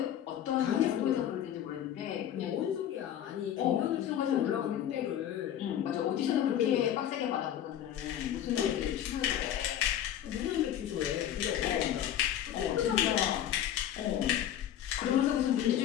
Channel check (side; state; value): right; quieter; 10.8 dB